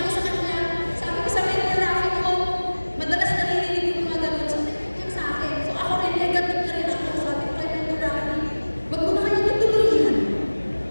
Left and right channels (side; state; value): both; inverted; correlation -1.00